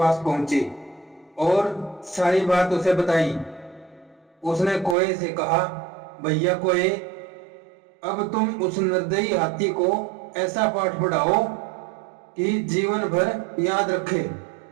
पहुंची और सारी बात उसे बताई। उसने कोए से कहा, भैया कोए, अब तुम उस निर्दयी हाथी को ऐसा पाठ पढ़ाओ कि जीवन भर याद रखे।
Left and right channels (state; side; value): drops out; left; at 5.0 s